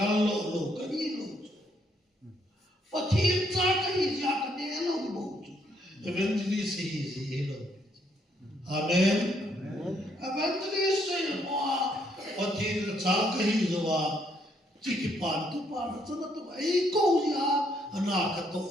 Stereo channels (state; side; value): normal; both; correlation 0.71